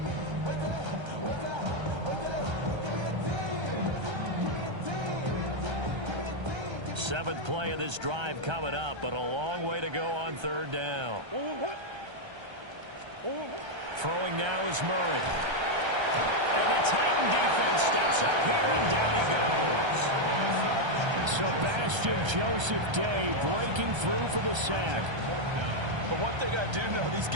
Seventh play of this drive coming up, but a long way to go on third down. Throwing now is Murray. And the Titan defense steps up here, and down he goes. Sebastian Joseph Day breaking through for the sack. But one thing I do know, these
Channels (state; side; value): late; left; 1.3 ms